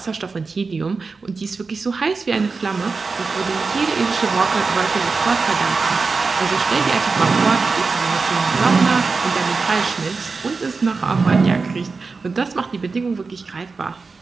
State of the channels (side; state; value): left; quieter; 4.4 dB